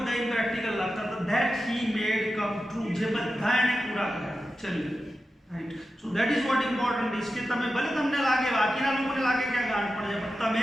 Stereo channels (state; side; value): normal; both; correlation 0.92